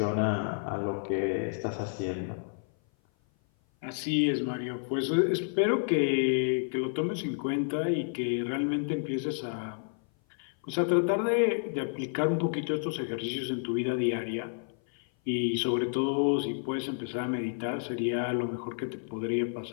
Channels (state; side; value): silent; right; 56 dB below the other